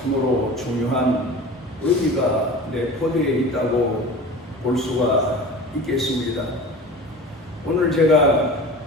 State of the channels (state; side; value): normal; both; correlation 0.36